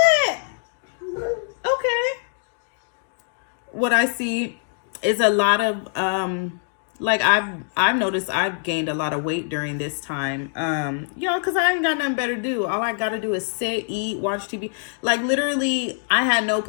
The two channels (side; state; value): right; silent; 63 dB below the other